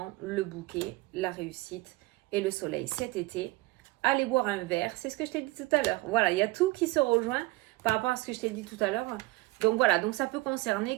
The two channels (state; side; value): quieter; left; 20.5 dB